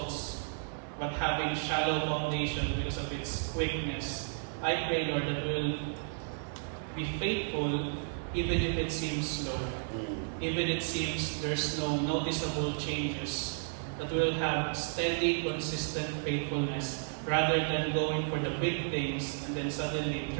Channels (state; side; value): silent; left; 56 dB below the other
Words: but having shallow foundation because of its quickness, I pray, Lord, that we'll be faithful even if it seems slow. Even it seems there's no noticeable changes, that we'll have steady, consistent faithfulness rather than going for the big things and then suddenly